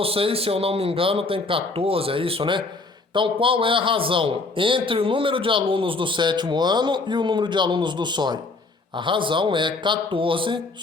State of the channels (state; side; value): quieter; right; 3.5 dB